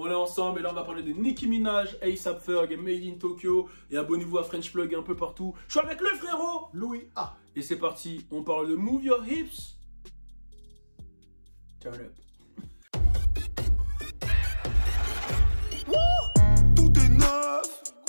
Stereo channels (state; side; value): inverted; both; correlation -1.00